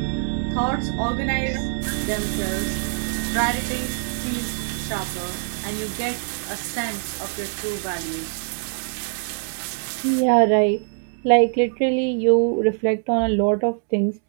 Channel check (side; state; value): left; silent; 63 dB below the other